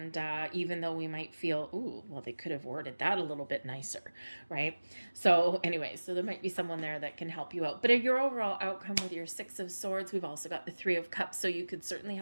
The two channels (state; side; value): inverted; both; correlation -1.00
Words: even though we might feel, ooh, well, they could have worded that a little bit nicer, right? So anyway, so there might be someone there that can help you out. But your overall outcome with your Six of Swords, we've also got the Three of Cups. So you could certainly